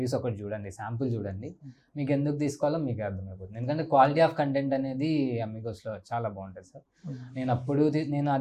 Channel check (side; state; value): both; identical; correlation 1.00